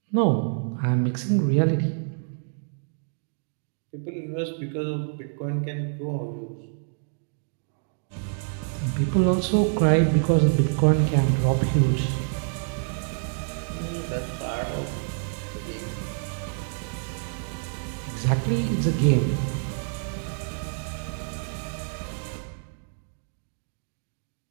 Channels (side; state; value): left; silent; 60 dB below the other